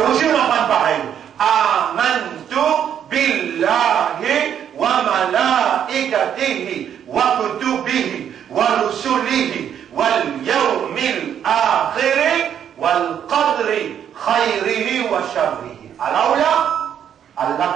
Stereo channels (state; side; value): quieter; left; 9.2 dB